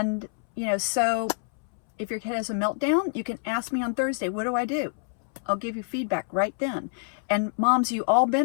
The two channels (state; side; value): silent; right; 60 dB below the other